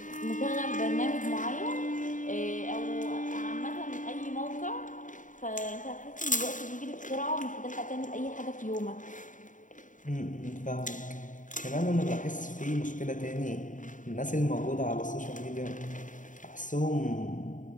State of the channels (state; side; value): late; right; 0.37 ms